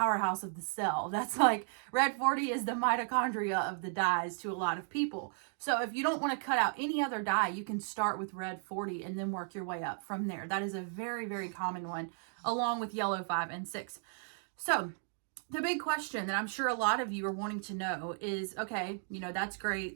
of the cell. That's like red 40 is the mitochondria of the dyes to a lot of people. So if you don't want to cut out any other dye, you can start with red 40 and then work your way up from there. That is a very, very common one, along with yellow 5 and 6. So the big question that I'm sure a lot of you are wanting to know is, okay, that's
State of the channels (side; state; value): left; silent; 55 dB below the other